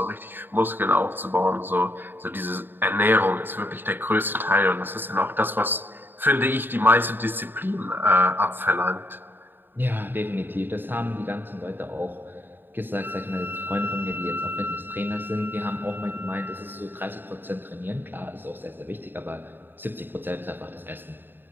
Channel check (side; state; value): left; late; 0.095 ms